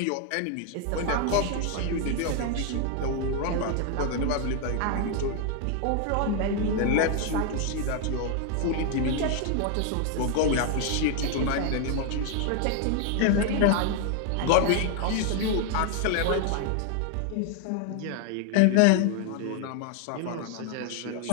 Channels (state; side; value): different; both; correlation 0.00